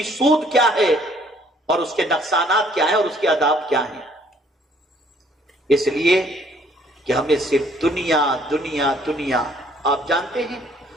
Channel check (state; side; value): normal; both; correlation 0.62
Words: سود کیا ہے اور اس کے نقصانات کیا ہیں اور اس کے آداب کیا ہیں، اس لیے کہ ہمیں صرف دنیا دنیا دنیا۔ آپ جانتے ہیں